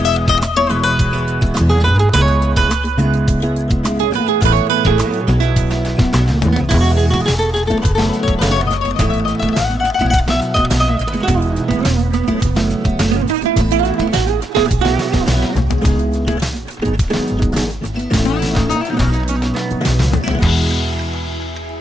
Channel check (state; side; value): normal; both; correlation 0.85